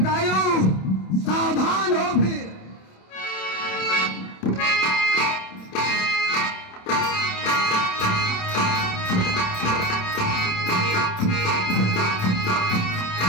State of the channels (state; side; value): late; right; 27 ms